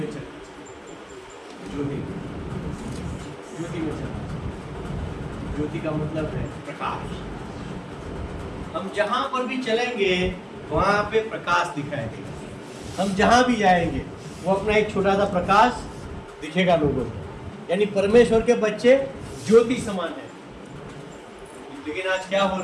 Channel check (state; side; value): identical; both; correlation 1.00